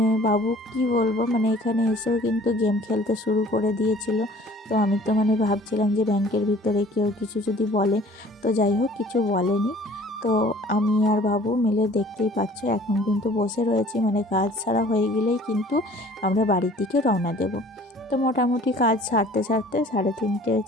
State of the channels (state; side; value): normal; both; correlation 0.51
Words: বাবু কি বলবো, মানে এখানে এসেও কিন্তু গেম খেলতে শুরু করে দিয়েছিল। তো আমি তো মানে ভাবছিলাম যে ব্যাংকের ভিতরে কেউ কিছু যদি বলে, তো যাই হোক কিছু বলেনি। তো আমি আর বাবু মিলে দেখতেই পাচ্ছ এখন কিন্তু বসে রয়েছি, মানে কাজ ছাড়া হয়ে গেলেই কিন্তু আমরা বাড়ির দিকে রওনা দেব। তো মোটামুটি কাজ সারতে সারতে 3:30